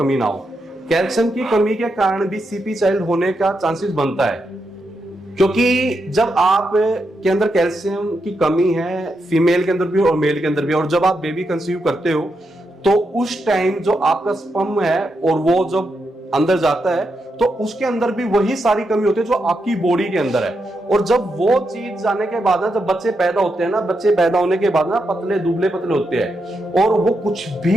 ना हो। कैल्शियम की कमी के कारण भी सीपी चाइल्ड होने का चांसेस बनता है, क्योंकि जब आप के अंदर कैल्शियम की कमी है, फीमेल के अंदर भी और मेल के अंदर भी, और जब आप बेबी कंसीव करते हो तो उस टाइम जो आपका स्पर्म है और वो जब अंदर जाता है तो उसके अंदर भी वही सारी कमी होती है जो आपकी बॉडी के अंदर है। और जब वो चीज जाने के बाद ना, जब बच्चे पैदा होते हैं ना, बच्चे पैदा होने के बाद ना पतले दुबले पतले होते हैं, और वो कुछ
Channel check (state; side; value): normal; both; correlation 0.84